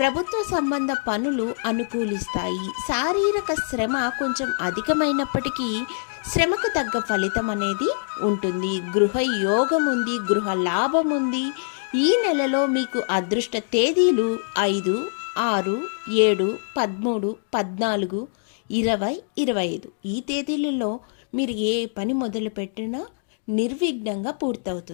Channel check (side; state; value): right; silent; digital silence